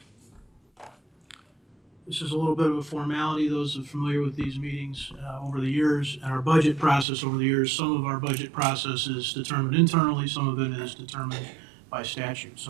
This is a little bit of a formality. Those who are familiar with these meetings over the years and our budget process over the years, some of our budget process is determined internally, some of it is determined by statute.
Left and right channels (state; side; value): drops out; left; at 7.1 s